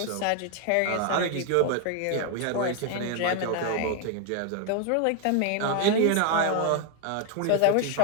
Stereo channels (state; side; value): different; both; correlation 0.01